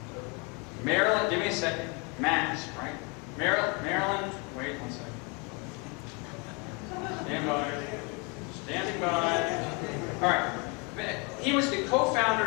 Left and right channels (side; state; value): right; quieter; 30.8 dB